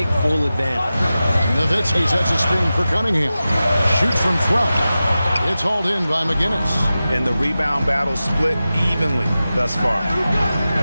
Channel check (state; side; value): inverted; both; correlation -0.94